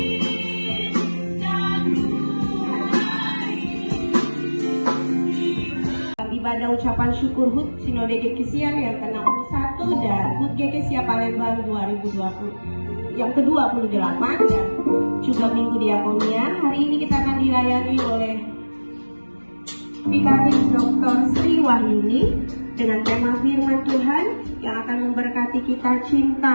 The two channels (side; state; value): both; inverted; correlation -1.00